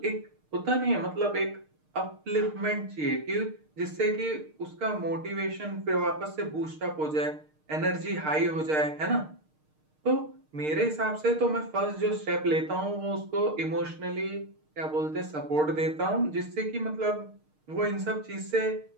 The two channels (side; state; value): left; late; 6.5 ms